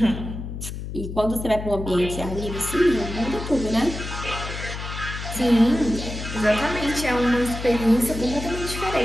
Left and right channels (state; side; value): noise; left; hum, 7 dB below the sound